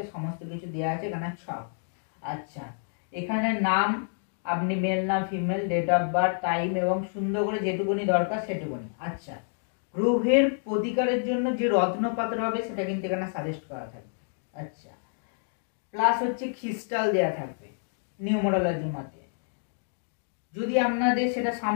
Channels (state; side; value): silent; right; digital silence